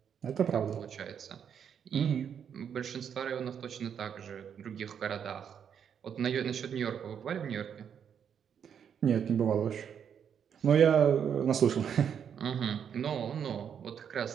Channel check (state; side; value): quieter; left; 8.0 dB